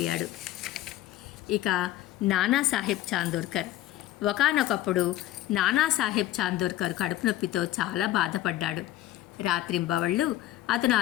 ఇక నానాసాహెబ్ చాందోర్కర్. ఒకానొకప్పుడు నానాసాహెబ్ చాందోర్కర్ కడుపు నొప్పితో చాలా బాధపడ్డాడు. రాత్రింబవళ్ళు అతను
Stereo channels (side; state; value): right; quieter; 14.2 dB